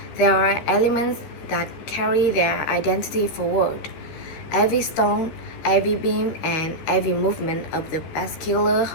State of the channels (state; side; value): late; right; 13 ms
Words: there are elements that carry their identity forward. Every stone, every beam, and every movement of the bascular